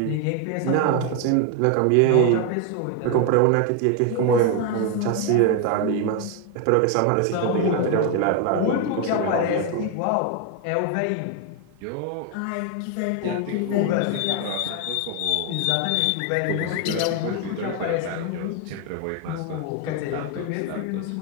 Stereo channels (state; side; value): different; both; correlation 0.01